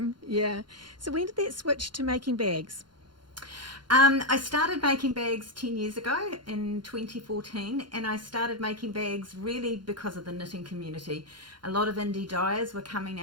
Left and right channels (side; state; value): left; late; 0.71 ms